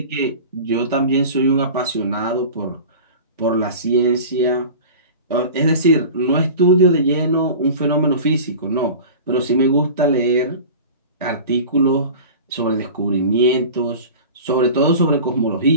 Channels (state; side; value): inverted; both; correlation -0.36